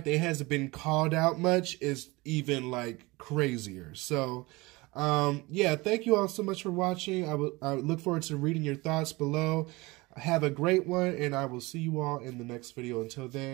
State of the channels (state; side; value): quieter; left; 22.9 dB